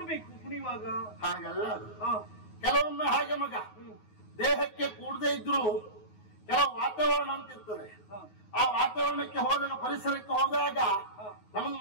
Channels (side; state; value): right; late; 9.5 ms